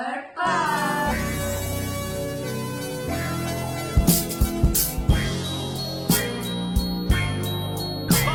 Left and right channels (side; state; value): both; identical; correlation 1.00